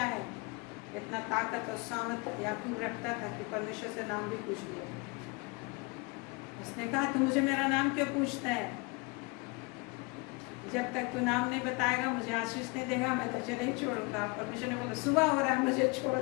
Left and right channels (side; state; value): right; quieter; 28.1 dB